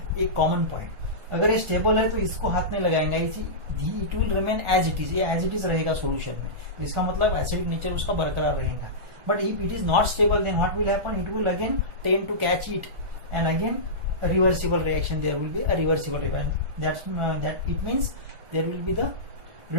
एक कॉमन पॉइंट. अगर ये स्टेबल है तो इसको हाथ में लगाएंगे, it will remain as it is, ये एज इट इज रहेगा सोल्यूशन में. इसका मतलब एसिडिक नेचर उसका बरकरार रहेगा. But if it is not stable, then what will happen? It will again tend to catch it and again a reversible reaction. There will be a reversible reaction. That it means there will be the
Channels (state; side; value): late; left; 1.4 ms